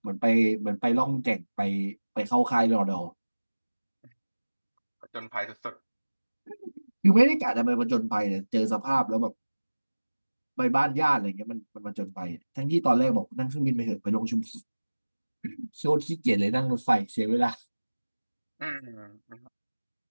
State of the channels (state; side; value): inverted; both; correlation -1.00